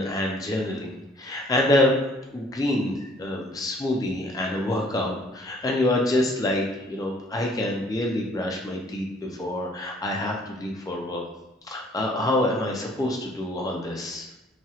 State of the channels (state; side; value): normal; both; correlation 0.58